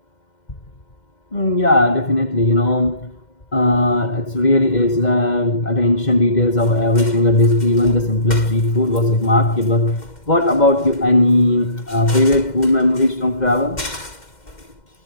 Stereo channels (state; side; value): late; right; 2.1 ms